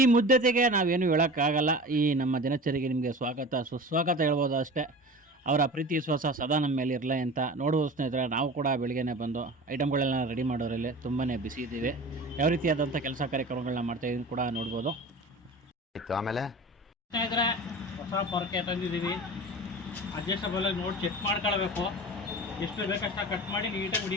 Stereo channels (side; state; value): both; normal; correlation 0.35